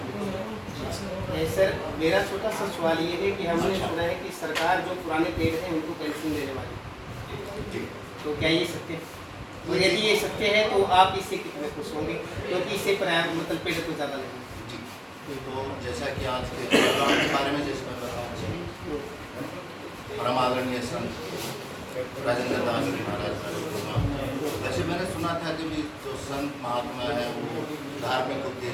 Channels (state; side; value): identical; both; correlation 1.00